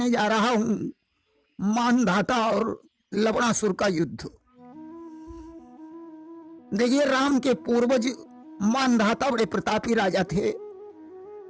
जा रहा हूं मानधाता और लवणासुर का युद्ध। देखिए, राम के पूर्वज मानधाता बड़े प्रतापी राजा थे,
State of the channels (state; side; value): identical; both; correlation 1.00